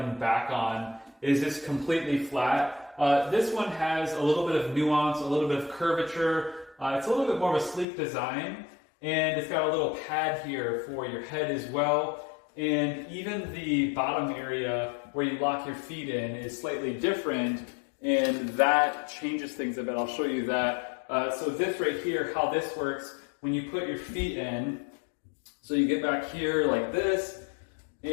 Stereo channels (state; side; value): drops out; right; at 7.9 s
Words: back on is just completely flat. This one has a little bit of nuance, a little bit of curvature. It's a little bit more of a sleek design. And it's got a little pad here for your head as well. And even the bottom area where you lock your feet in is slightly different, and that changes things a bit. I'll show you that. So this right here, how this works, when you put your feet in, so you get back here like this,